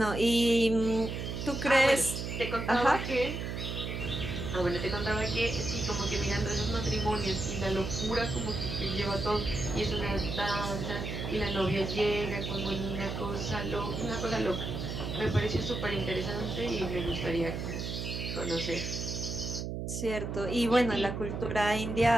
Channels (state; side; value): noise; right; hum, 4 dB below the sound